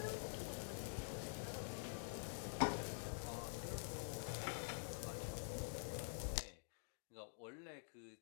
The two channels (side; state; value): right; silent; digital silence